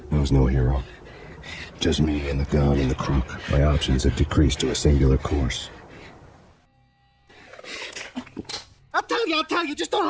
I was no hero. Just me and the gun and the crook. My options had decreased to a singular course. I'll tell you, just don't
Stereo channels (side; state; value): both; identical; correlation 1.00